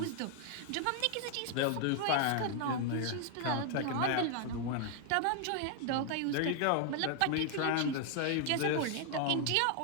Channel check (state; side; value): different; both; correlation 0.00